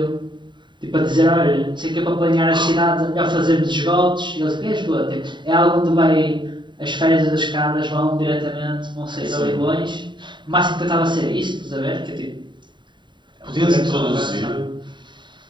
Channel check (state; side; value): late; left; 0.23 ms